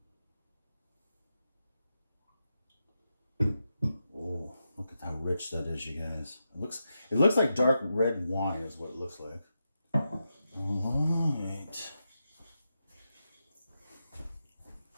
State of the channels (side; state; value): both; inverted; correlation -0.88